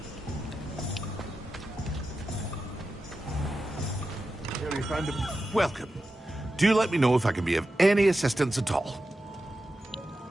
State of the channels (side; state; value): both; normal; correlation 0.91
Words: and welcome. Do let me know if I can be of any assistance at all.